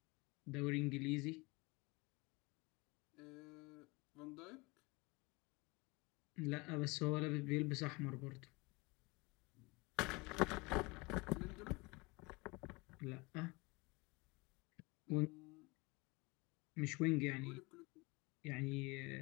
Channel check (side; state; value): right; quieter; 25.8 dB